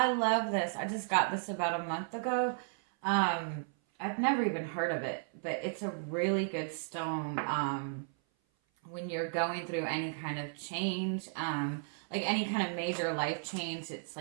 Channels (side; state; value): left; silent; 55 dB below the other